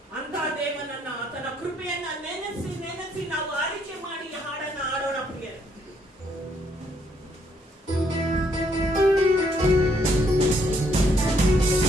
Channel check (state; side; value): normal; both; correlation 0.70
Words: ಅಂತ ದೇವನನ್ನ, ಆತನ ಕೃಪೆಯನ್ನ ನೆನೆಸಿ ನೆನೆಸಿ ನಾವು ಆರಿಕೆ ಮಾಡಿ ಹಾಡನ್ನ ಆಡೋಣ ಪ್ರಿಯರೇ.